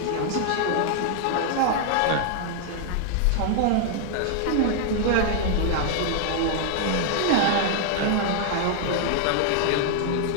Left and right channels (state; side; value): different; both; correlation 0.00